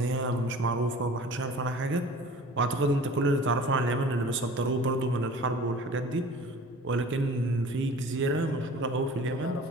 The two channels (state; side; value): normal; both; correlation 0.43